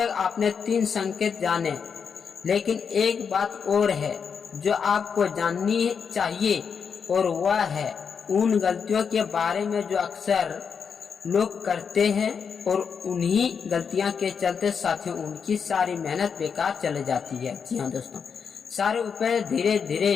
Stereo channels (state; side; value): quieter; right; 6.4 dB